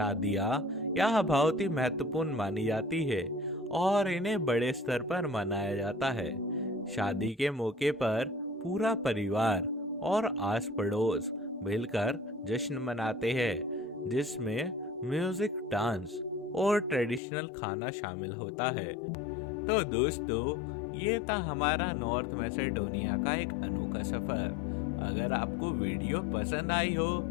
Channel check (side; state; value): right; drops out; at 17.2 s